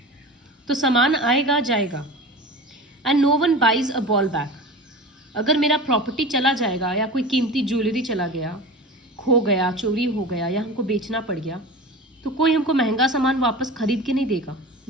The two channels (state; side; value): normal; both; correlation 0.33